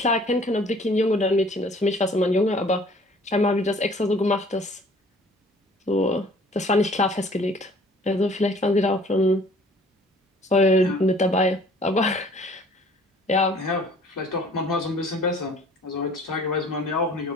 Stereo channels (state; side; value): normal; both; correlation 0.53